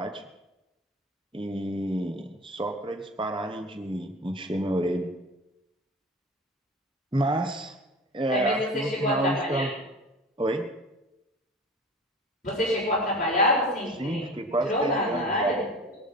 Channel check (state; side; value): normal; both; correlation 0.36